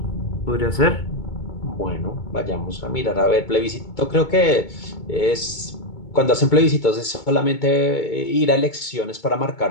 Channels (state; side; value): late; right; 2.2 ms